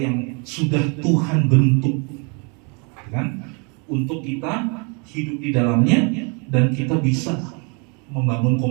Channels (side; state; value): left; quieter; 34.9 dB